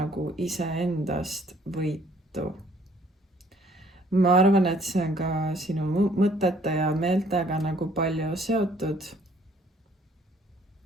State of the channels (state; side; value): normal; both; correlation 0.61